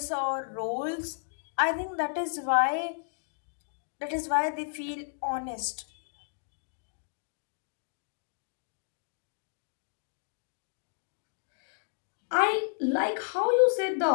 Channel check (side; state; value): right; silent; digital silence